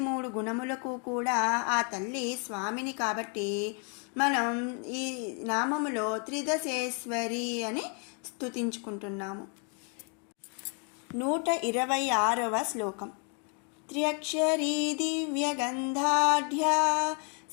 గుణములకు కూడా ఆ తల్లి స్వామిని. కాబట్టి మనం ఈ నామములో త్రిదశేశ్వరి అని స్తుతించుకుంటున్నాము. 126వ శ్లోకం. త్ర్యక్షరీ దివ్యగంధాఢ్యా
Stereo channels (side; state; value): right; quieter; 39.6 dB